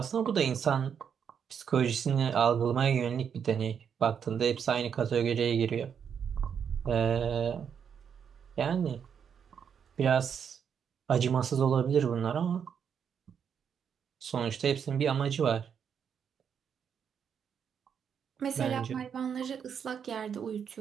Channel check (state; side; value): quieter; left; 7.5 dB